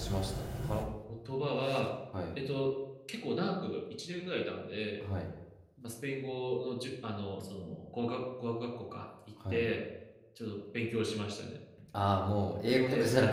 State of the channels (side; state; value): both; identical; correlation 1.00